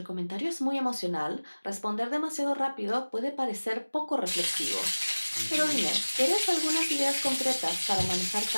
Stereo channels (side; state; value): both; inverted; correlation -1.00